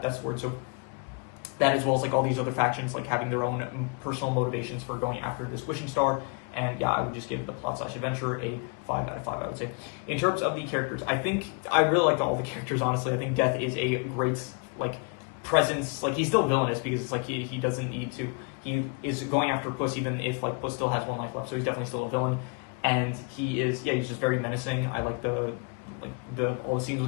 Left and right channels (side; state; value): right; quieter; 34.1 dB